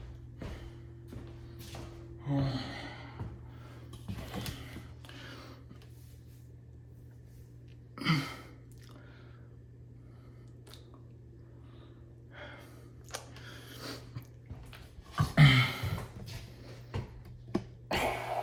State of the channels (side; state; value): both; identical; correlation 1.00